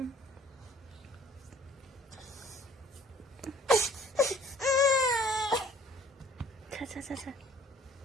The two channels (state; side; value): normal; both; correlation 0.56